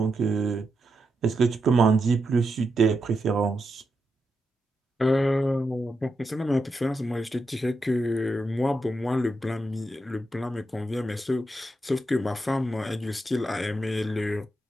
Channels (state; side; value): normal; both; correlation 0.85